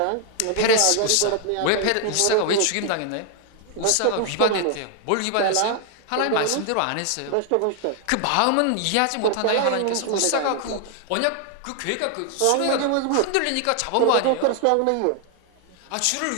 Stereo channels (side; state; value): both; different; correlation 0.00